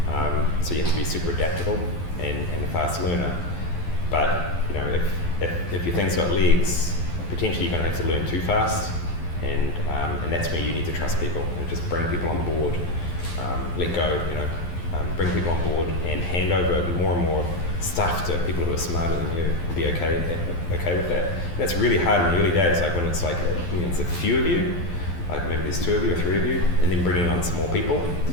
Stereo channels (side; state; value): right; late; 12 ms